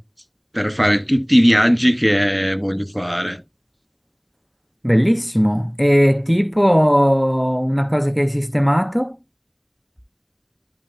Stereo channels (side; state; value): both; identical; correlation 1.00